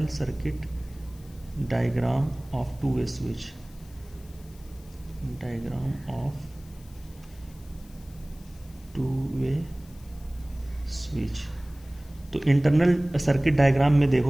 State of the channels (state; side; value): noise; left; hiss, 25 dB below the sound